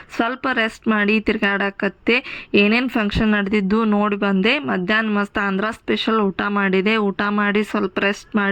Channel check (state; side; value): identical; both; correlation 1.00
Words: ಸ್ವಲ್ಪ ರೆಸ್ಟ್ ಮಾಡಿ ತಿರ್ಗಾಡಕತ್ತೆ. ಏನೇನು ಫಂಕ್ಷನ್ ನಡೆದಿದ್ದು ನೋಡಿ ಬಂದೆ. ಮಧ್ಯಾಹ್ನ ಮಸ್ತ್ ಆಂಧ್ರ ಸ್ಪೆಷಲ್ ಊಟ ಮಾಡಿದೆ. ಊಟ ಮಾಡಿ ಸ್ವಲ್ಪ ರೆಸ್ಟ್